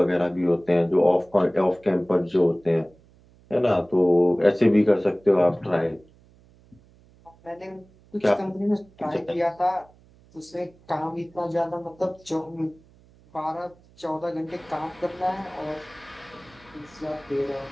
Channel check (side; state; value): right; noise; hum, 28 dB below the sound